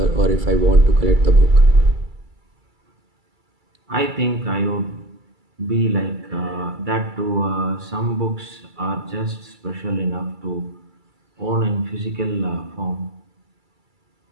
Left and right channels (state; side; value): late; left; 2.3 ms